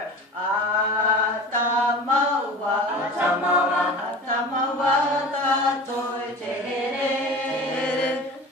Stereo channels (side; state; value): both; normal; correlation 0.36